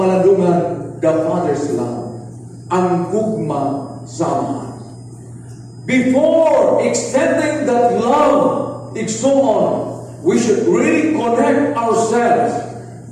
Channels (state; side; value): identical; both; correlation 1.00